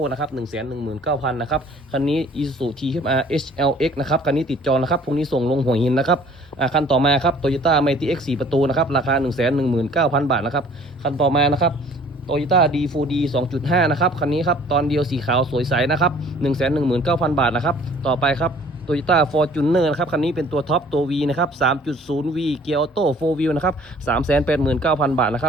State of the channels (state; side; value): normal; both; correlation 0.53